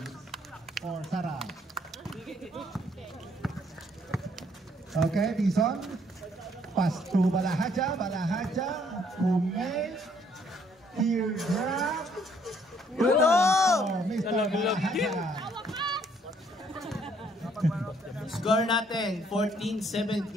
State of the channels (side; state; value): both; normal; correlation 0.66